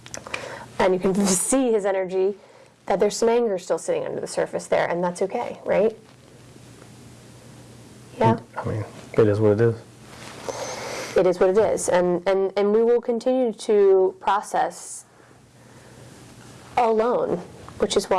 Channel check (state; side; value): identical; both; correlation 1.00